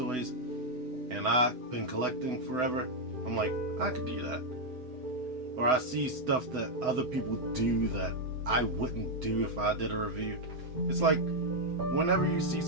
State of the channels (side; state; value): left; late; 7.9 ms